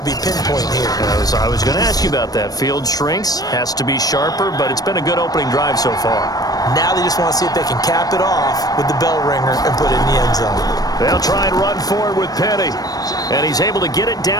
be pinpoint here. I was going to ask you about that. Field shrinks, has to be sharper, but it's been a good opening drive so far. Now they just want to see if they can cap it off with the bell ringer and put it in the end zone. They'll try and run forward with Penny. And he's able to get it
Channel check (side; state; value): right; late; 0.18 ms